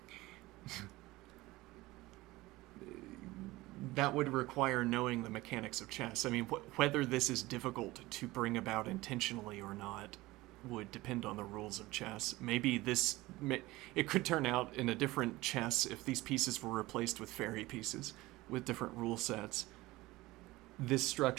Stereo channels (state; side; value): quieter; left; 19.5 dB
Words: that would require knowing the mechanics of chess. I mean, whether this is difficult to bring about intentionally or not would depend on the rules of chess. Maybe this... It could turn out in a different chess if these pieces were replaced with fairy pieces with different rule sets. This